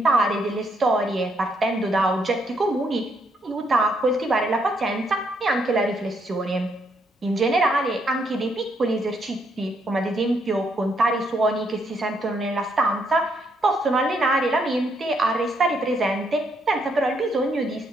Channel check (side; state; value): both; normal; correlation 0.74